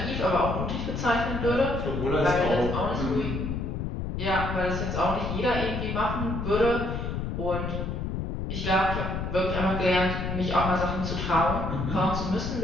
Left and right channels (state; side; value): noise; left; rumble, 3 dB below the sound